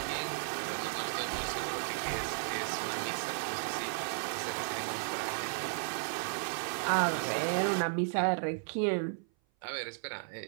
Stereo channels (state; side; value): silent; left; 55 dB below the other